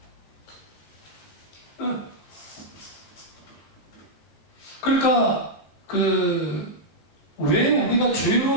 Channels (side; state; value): right; late; 15 ms